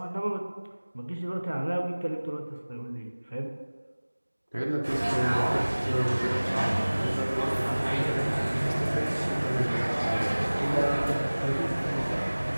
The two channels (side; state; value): both; inverted; correlation -1.00